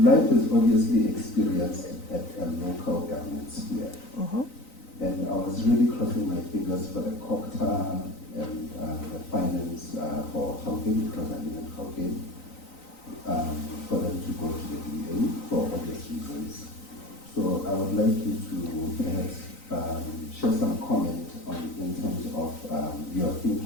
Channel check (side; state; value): right; late; 3.9 ms